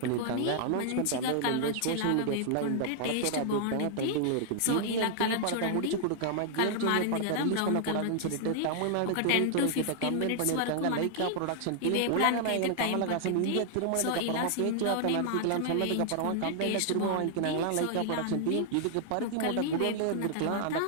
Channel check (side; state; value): both; different; correlation -0.01